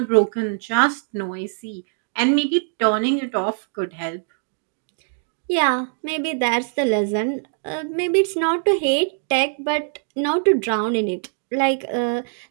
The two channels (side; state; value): left; silent; 64 dB below the other